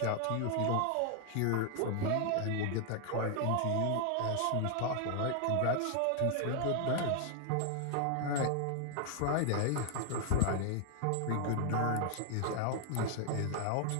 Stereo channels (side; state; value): both; different; correlation 0.00